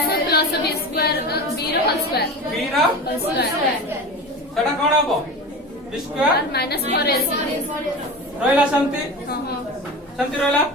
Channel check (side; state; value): both; normal; correlation 0.29